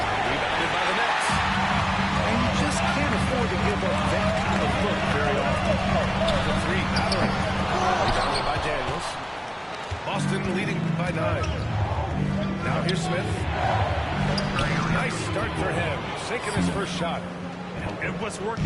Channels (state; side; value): identical; both; correlation 1.00